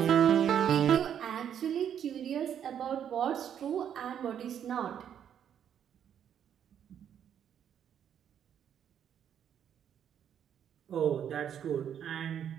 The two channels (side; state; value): left; quieter; 9.1 dB